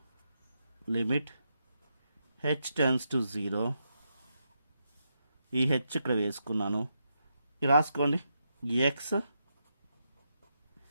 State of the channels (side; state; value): both; inverted; correlation -0.83